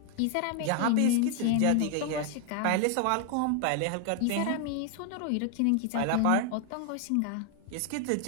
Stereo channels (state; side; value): different; both; correlation 0.00